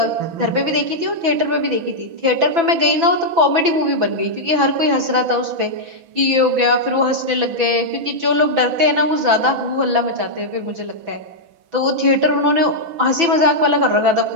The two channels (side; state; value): left; late; 6.0 ms